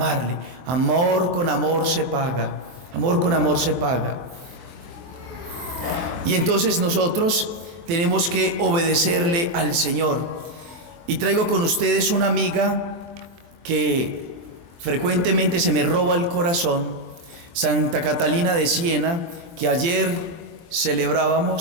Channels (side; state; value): left; late; 23 ms